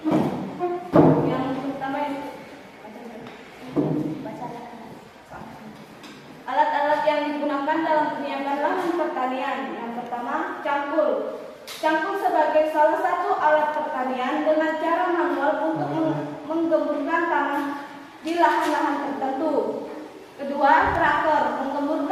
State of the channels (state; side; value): identical; both; correlation 1.00